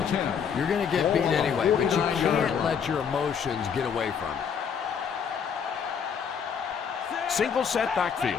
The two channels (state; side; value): quieter; right; 7.1 dB